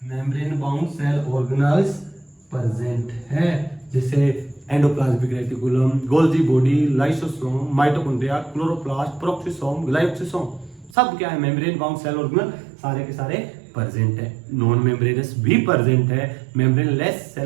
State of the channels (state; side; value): drops out; left; at 11.0 s